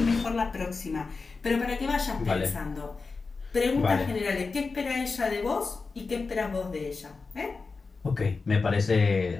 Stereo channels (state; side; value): quieter; right; 4.3 dB